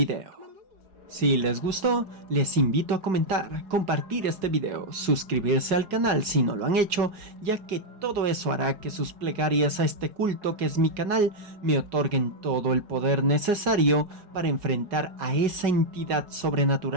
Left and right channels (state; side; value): late; left; 5.3 ms